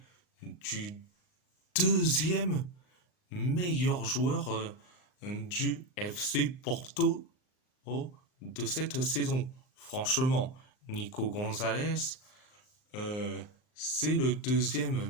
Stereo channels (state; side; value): late; right; 39 ms